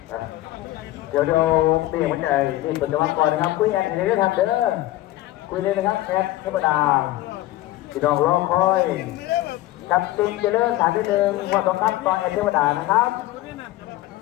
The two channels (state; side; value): quieter; right; 16.1 dB